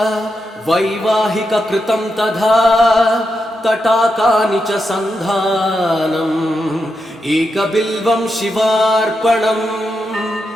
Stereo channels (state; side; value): normal; both; correlation 0.85